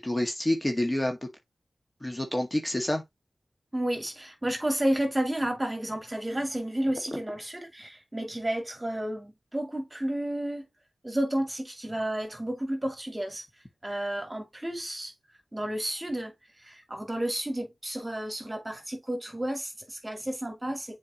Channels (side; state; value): both; normal; correlation 0.98